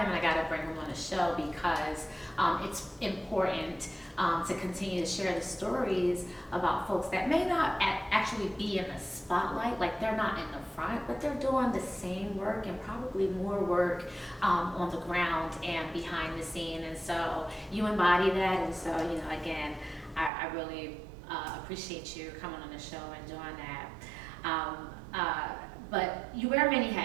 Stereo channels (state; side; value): drops out; left; at 20.3 s